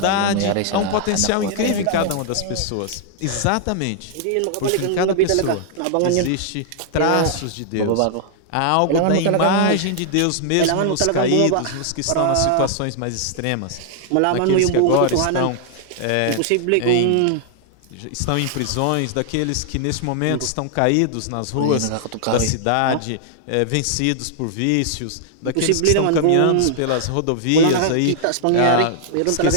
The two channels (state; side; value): different; both; correlation -0.01